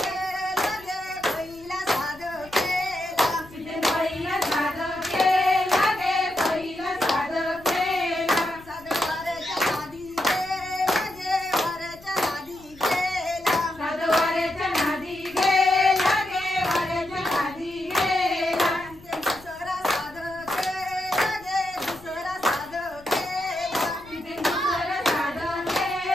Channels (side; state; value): left; noise; rumble, 23 dB below the sound